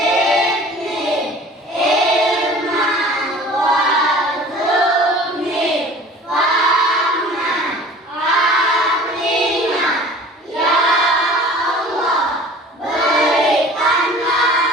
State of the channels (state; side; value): normal; both; correlation 0.45